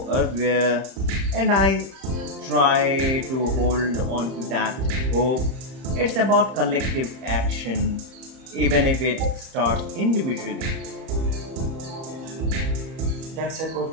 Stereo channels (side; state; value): left; late; 30 ms